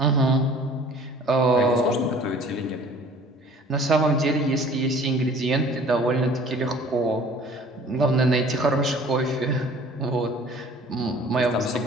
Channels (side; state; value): both; normal; correlation 0.50